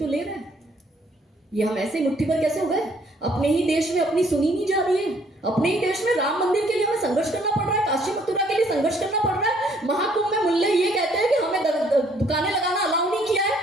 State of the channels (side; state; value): both; normal; correlation 0.64